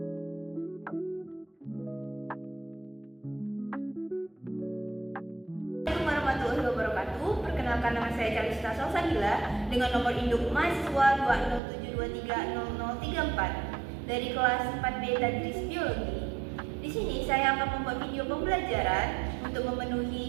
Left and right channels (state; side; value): drops out; left; at 11.6 s